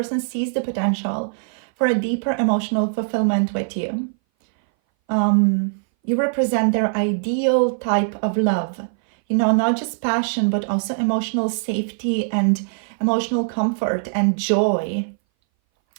sees the potential for a deeper emotional fulfillment with you. You represent their ideal type of love, you know, not just passion, but also emotional safety and emotional comfort and joy.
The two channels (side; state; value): left; silent; 60 dB below the other